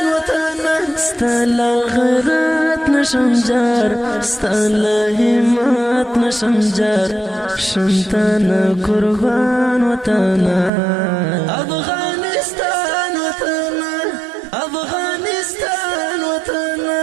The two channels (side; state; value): left; drops out; at 10.7 s